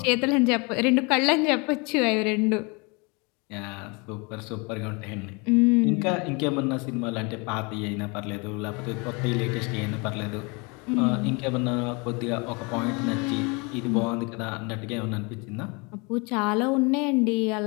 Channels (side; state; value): right; quieter; 29.8 dB